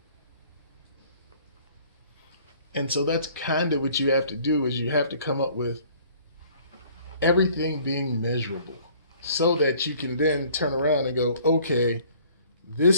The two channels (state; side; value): inverted; both; correlation -0.55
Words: And so that's kind of what you have to do, is you have to come up with everything being measurable so that you can then turn around and go, okay,